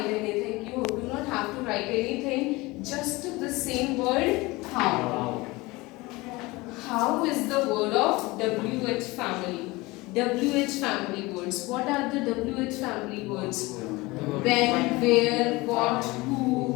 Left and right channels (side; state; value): right; quieter; 22.2 dB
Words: anything. You do not have to write anything. Just the same word, how. How is the word of WH family. WH family words. What are the WH family words? When, where, what,